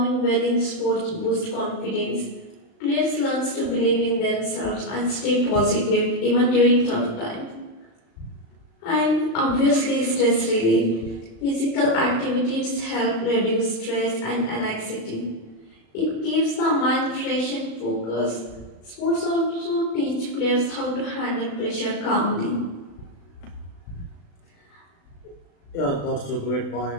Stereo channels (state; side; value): late; right; 36 ms